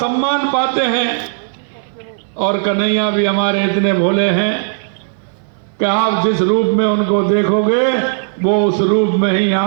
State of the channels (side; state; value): left; silent; 62 dB below the other